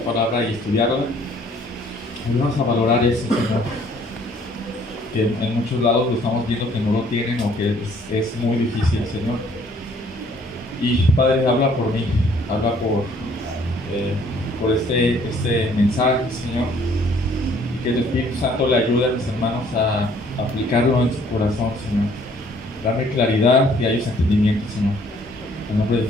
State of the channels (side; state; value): both; normal; correlation 0.60